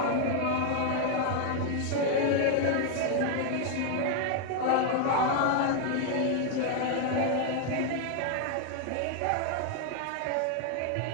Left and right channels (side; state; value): both; different; correlation 0.00